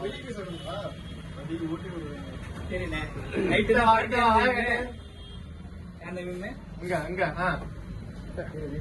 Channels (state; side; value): identical; both; correlation 1.00